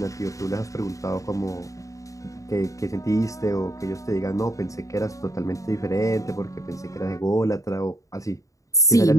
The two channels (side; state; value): right; late; 0.16 ms